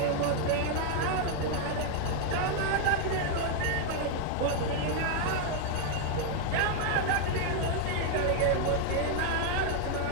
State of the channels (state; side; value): different; both; correlation 0.00